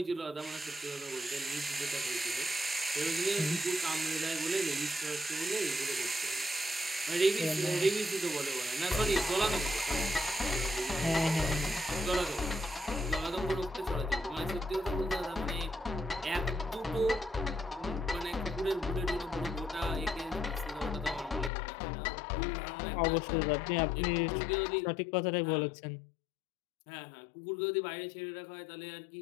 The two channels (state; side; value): drops out; right; at 21.5 s